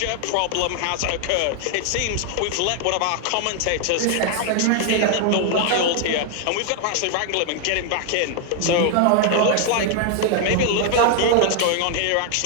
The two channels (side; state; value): both; different; correlation 0.00